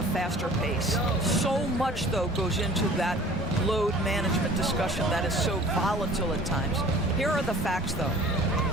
faster pace. So much, though, goes into that load management discussion that is so volatile at times. Here are the facts, though.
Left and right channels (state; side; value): normal; both; correlation 0.47